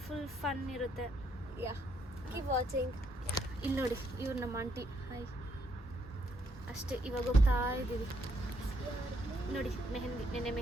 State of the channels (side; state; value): both; normal; correlation 0.72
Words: ಫುಲ್ ಫನ್ ಇರುತ್ತೆ. Keep watching. ಇಲ್ಲಿ ನೋಡಿ, ಇವ್ರು ನಮ್ಮ ಆಂಟಿ. ಹಾಯ್. ಅಷ್ಟೇ, ಇವಾಗ ಹೋಗ್ತಾ ಇದ್ದೀವಿ. ನೋಡಿ, ನೆನ್ನೆ